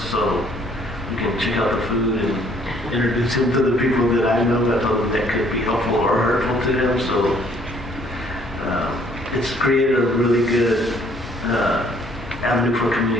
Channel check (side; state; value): both; normal; correlation 0.61